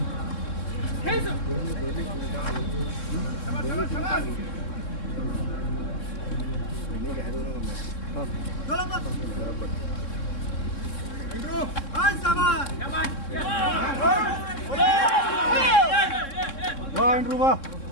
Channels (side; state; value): right; late; 3.7 ms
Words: वाह इंद्रू वाह